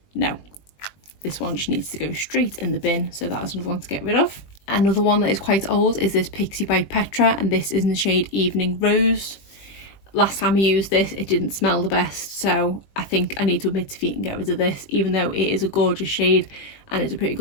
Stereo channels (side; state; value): right; late; 20 ms